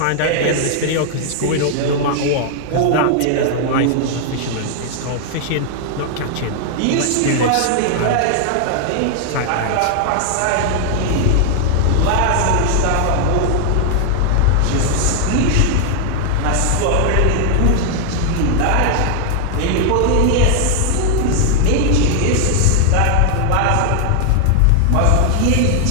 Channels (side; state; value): both; different; correlation 0.00